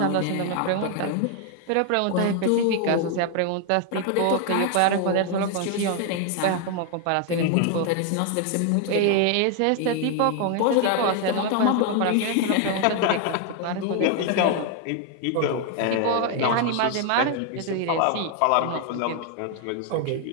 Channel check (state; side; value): different; both; correlation 0.00